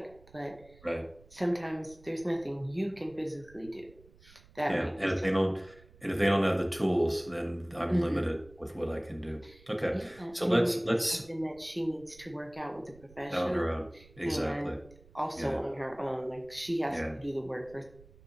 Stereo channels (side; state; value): right; noise; rumble, 24 dB below the sound